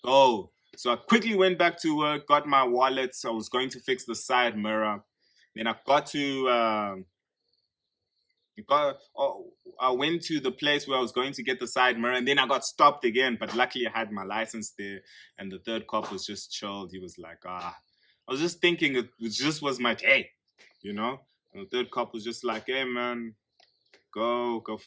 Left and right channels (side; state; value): both; identical; correlation 1.00